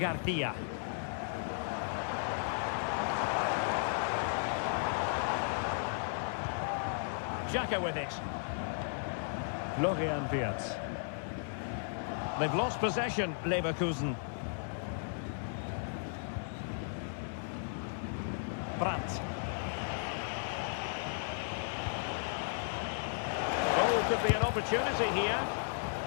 Xhaka with it. Florian Wirtz. They've lost possession, Leverkusen. Brandt. Oh, could be an opportunity here.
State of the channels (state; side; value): silent; right; digital silence